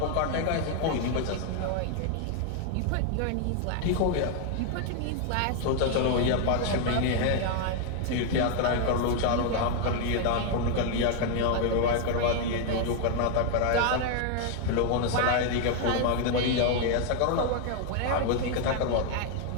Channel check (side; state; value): both; different; correlation 0.00